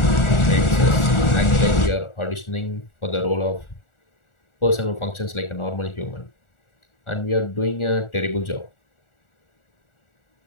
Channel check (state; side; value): late; right; 1.4 ms